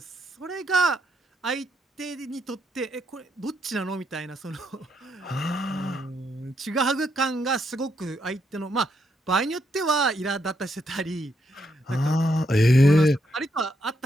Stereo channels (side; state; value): both; normal; correlation 0.78